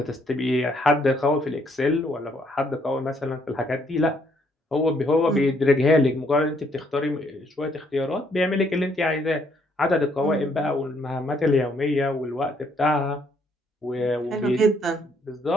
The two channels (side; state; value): both; normal; correlation 0.69